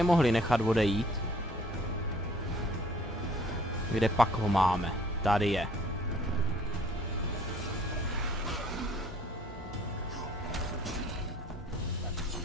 mohli nechat odejít. Kde pak ho máme? Tady je.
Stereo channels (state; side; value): normal; both; correlation 0.57